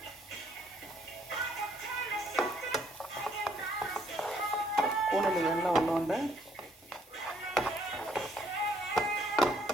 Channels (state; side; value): normal; both; correlation 0.66